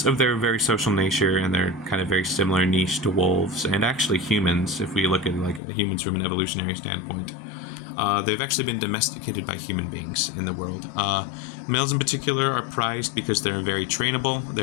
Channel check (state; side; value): drops out; right; at 5.6 s